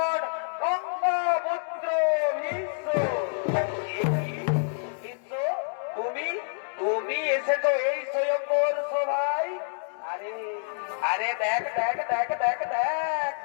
গঙ্গাপুত্র ভীষ্ম। তুমি তুমি এসেছো এই স্বয়ম্বর সভায়? আরে আরে দেখ দেখ দেখ দেখ দেখ,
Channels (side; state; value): right; silent; digital silence